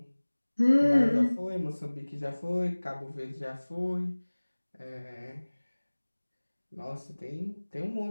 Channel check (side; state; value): both; inverted; correlation -1.00